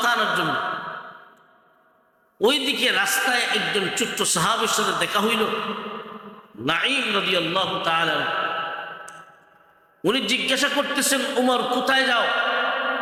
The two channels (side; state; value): both; identical; correlation 1.00